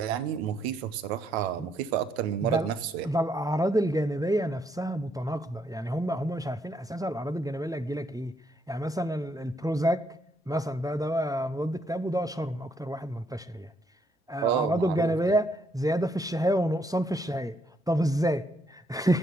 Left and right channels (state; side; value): normal; both; correlation 0.73